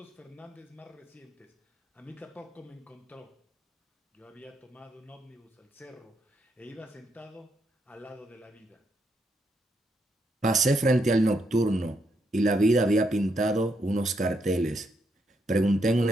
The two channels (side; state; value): both; normal; correlation 0.78